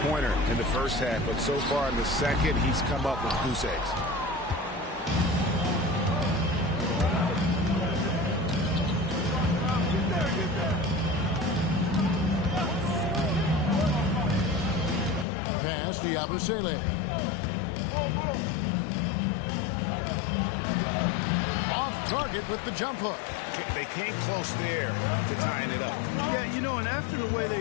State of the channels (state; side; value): drops out; right; at 15.2 s